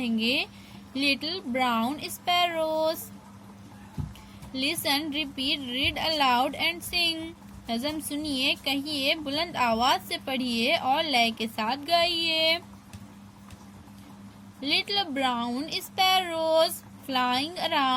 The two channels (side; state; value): both; identical; correlation 1.00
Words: little brown sparrows. Listen, repeat, read aloud and सिंग। नज़म सुनिए, कहिए, बुलंद आवाज से पढ़िए और लय के साथ गाइए। Little brown sparrows flying